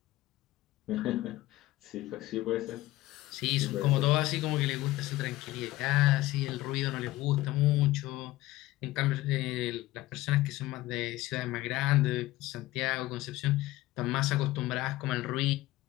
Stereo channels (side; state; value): right; quieter; 17.3 dB